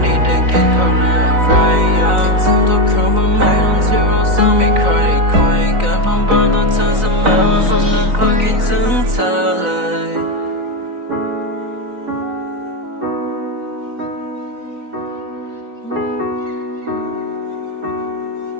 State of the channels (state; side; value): late; left; 3.9 ms